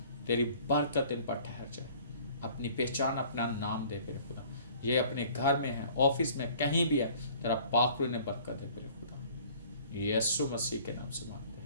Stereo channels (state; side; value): inverted; both; correlation -0.52